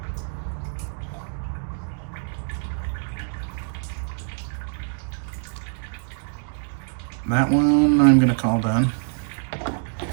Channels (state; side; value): silent; left; digital silence